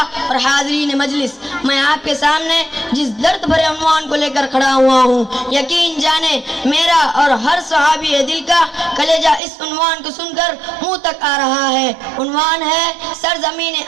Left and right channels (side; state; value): left; drops out; at 9.4 s